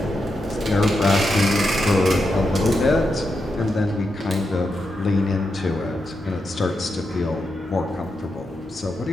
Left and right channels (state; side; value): normal; both; correlation 0.86